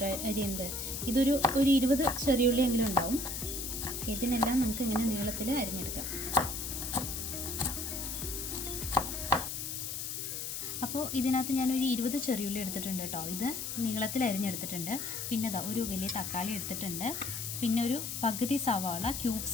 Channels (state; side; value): noise; left; hiss, 4 dB below the sound